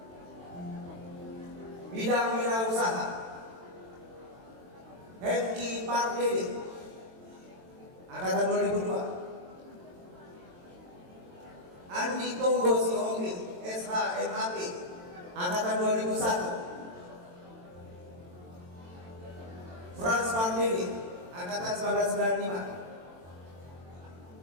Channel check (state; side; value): late; left; 22 ms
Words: Bidang wirausaha, Hengki Pardede, Angkatan 2002. Andi Tonggo Sihombing SHMAP, Angkatan 2001. Franz Pardede, Angkatan